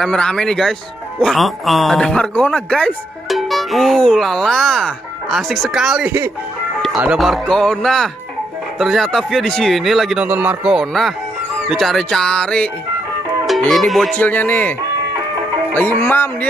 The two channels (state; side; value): normal; both; correlation 0.78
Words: nih guys. Wah, ada Markona guys. Lala, asik sekali. Ada Markona. Ternyata Via di sini lagi nonton Markona. Dicari-cari. Ini bocilnya nih. Lagi mam